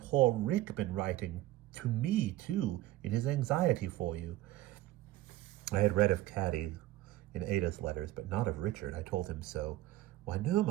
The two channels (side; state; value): left; quieter; 15.9 dB